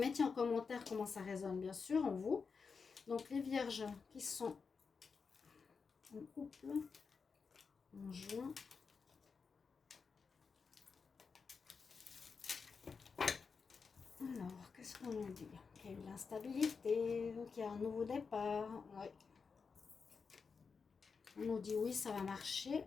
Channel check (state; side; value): quieter; right; 5.3 dB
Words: en commentaire comment ça résonne, bien sûr, en vous. Donc, les vierges qui sont en couple en juin. Alors, qu'est-ce qu'on nous dit? Qu'il y a eu de l'instabilité, qu'il y a un nouveau départ. Ouais. On nous dit oui, ça va marcher.